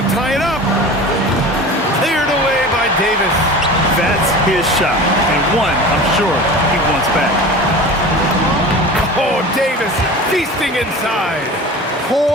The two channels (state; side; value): normal; both; correlation 0.36